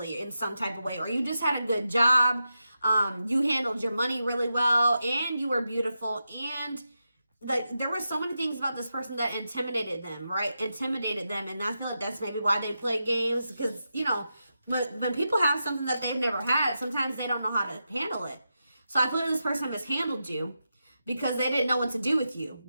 in some type of way, or you just had a good job. You handled your money really well, and you were beautiful. And like, there were so many things about this person that intimidated them, right? Intimidated them. And I feel like that's maybe why they play games, because, you know, when people have something that they've never had, sometimes they don't know how to handle it. So I feel like this person mishandled you because they didn't know what to do with you.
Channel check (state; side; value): inverted; both; correlation -0.88